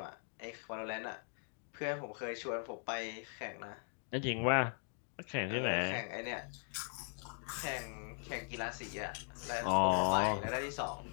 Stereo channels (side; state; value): right; silent; 51 dB below the other